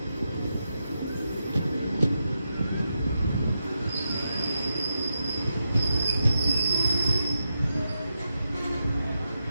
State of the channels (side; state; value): both; inverted; correlation -0.86